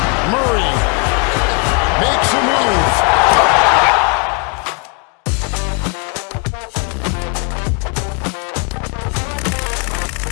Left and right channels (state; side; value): quieter; right; 35.0 dB